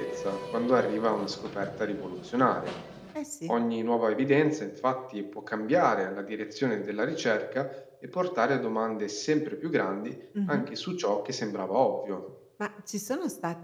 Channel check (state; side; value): identical; both; correlation 1.00